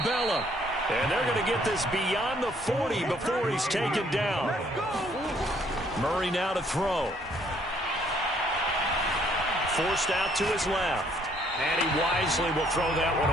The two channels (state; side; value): normal; both; correlation 0.65